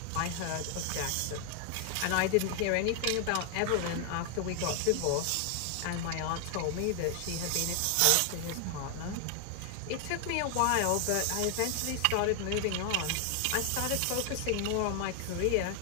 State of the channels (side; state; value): both; different; correlation 0.00